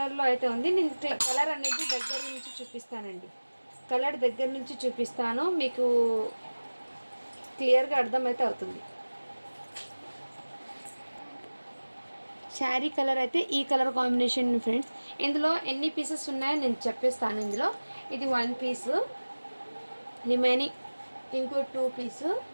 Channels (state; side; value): inverted; both; correlation -1.00